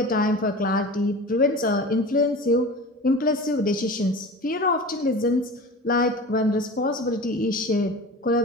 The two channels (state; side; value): normal; both; correlation 0.34